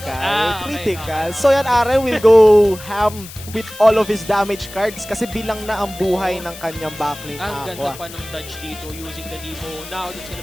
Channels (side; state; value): left; noise; hiss, 15 dB below the sound